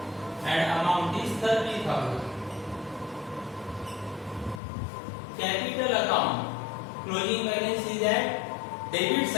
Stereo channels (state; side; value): drops out; right; at 4.6 s